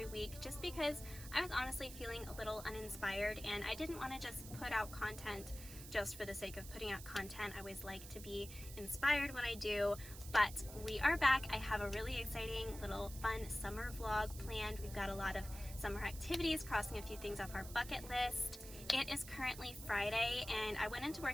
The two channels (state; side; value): noise; right; hiss, 13 dB below the sound